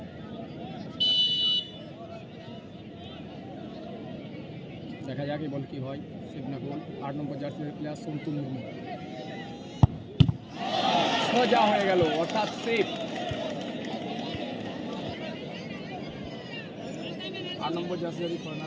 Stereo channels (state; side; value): identical; both; correlation 1.00